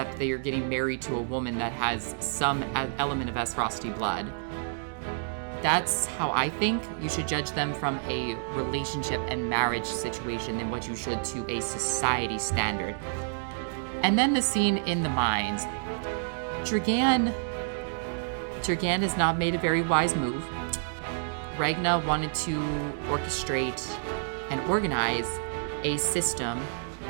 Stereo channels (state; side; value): silent; left; digital silence